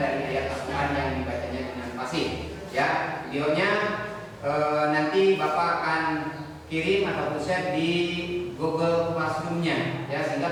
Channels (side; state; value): both; identical; correlation 1.00